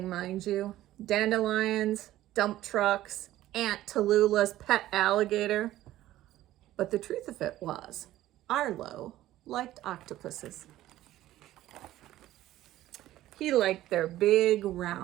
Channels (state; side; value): quieter; left; 14.6 dB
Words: mind you. Dandelions, dump trucks, Aunt Tallulah's pet alligator. But the truth of it was, Arlo liked octopuses. He liked their big